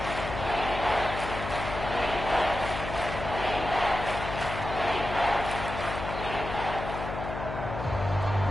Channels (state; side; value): noise; left; hum, 7 dB below the sound